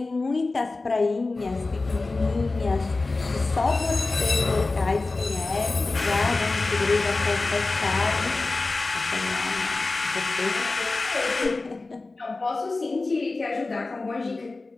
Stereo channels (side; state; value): right; quieter; 3.5 dB